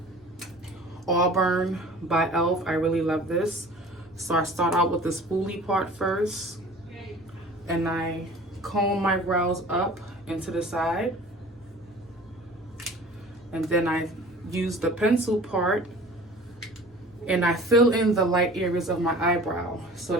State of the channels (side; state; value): both; normal; correlation 0.44